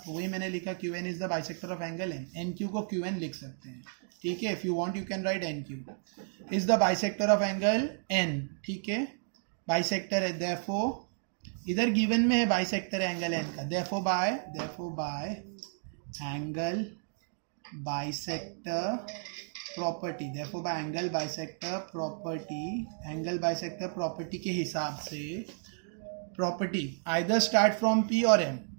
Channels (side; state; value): left; silent; digital silence